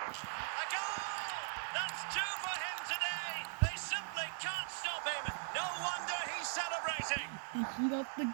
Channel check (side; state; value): left; silent; digital silence